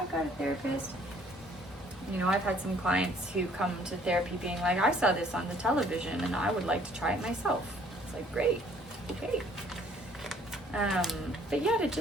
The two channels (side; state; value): both; normal; correlation 0.59